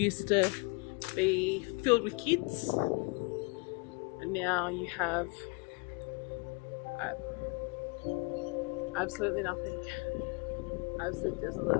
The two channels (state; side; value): quieter; right; 30.2 dB